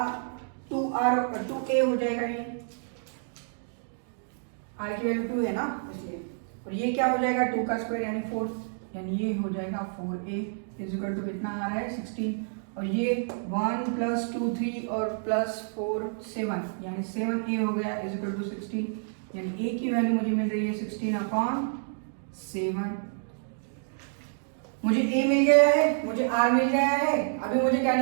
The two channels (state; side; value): silent; left; digital silence